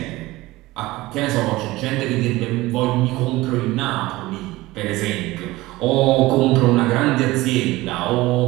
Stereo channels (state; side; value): quieter; left; 19.1 dB